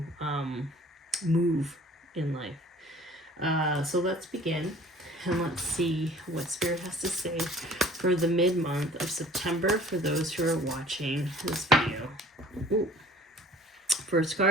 move in life. So let's begin. And let's see what Spirit has to say for the mid-month of September for those who are watching this video. Ooh. First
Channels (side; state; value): both; normal; correlation 0.49